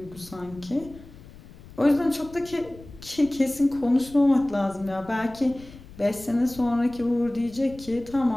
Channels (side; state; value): left; noise; rumble, 19 dB below the sound